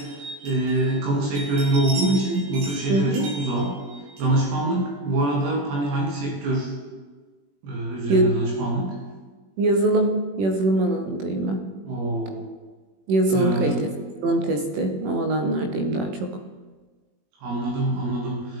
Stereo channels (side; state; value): left; late; 21 ms